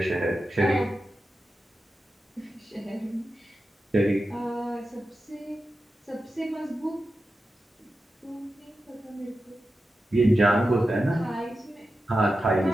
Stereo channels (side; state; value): both; normal; correlation 0.91